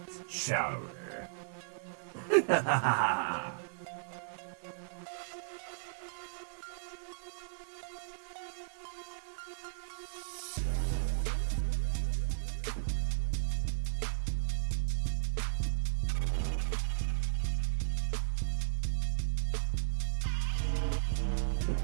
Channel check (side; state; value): left; silent; digital silence